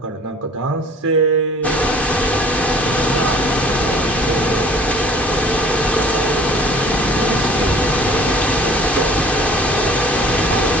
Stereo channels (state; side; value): normal; both; correlation 0.50